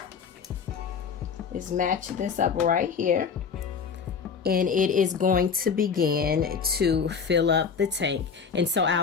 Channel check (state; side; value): quieter; right; 6.2 dB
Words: is match this up right here. And it is going to begin to fill up the tank. And so